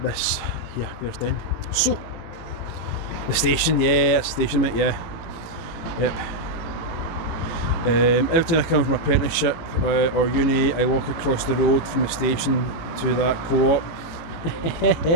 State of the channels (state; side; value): late; right; 18 ms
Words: this here, Bearsden. So the station, yeah, that's the station, mate, yeah, yep. Every time I come from apprenticeship or uni, I walk across the road from the station to that Co-op.